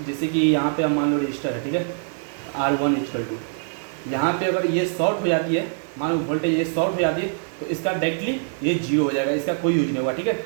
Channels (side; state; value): left; silent; digital silence